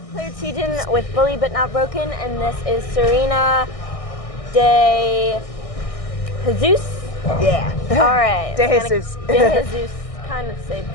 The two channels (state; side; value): late; right; 1.6 ms